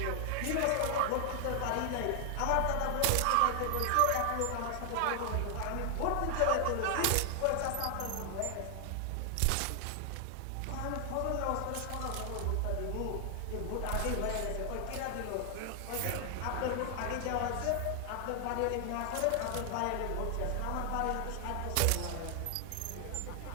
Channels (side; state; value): both; different; correlation 0.00